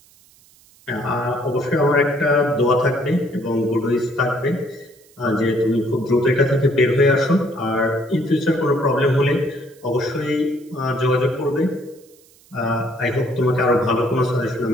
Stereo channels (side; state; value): right; noise; hiss, 29 dB below the sound